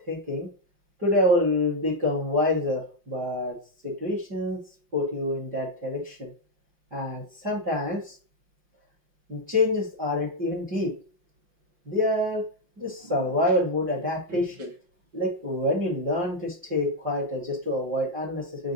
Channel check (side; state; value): left; late; 5.6 ms